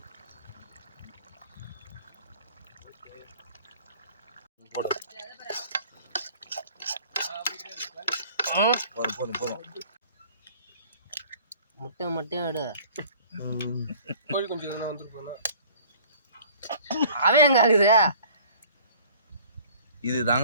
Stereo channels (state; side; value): inverted; both; correlation -0.50